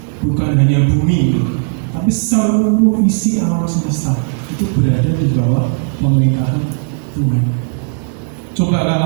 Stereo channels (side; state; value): left; silent; 56 dB below the other